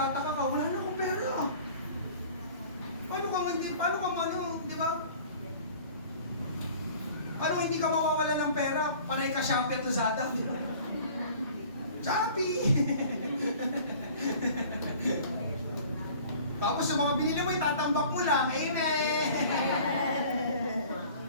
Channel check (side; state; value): both; inverted; correlation -0.47